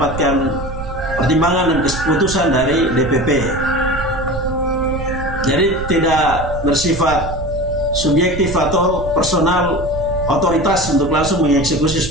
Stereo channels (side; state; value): right; noise; rumble, 9 dB below the sound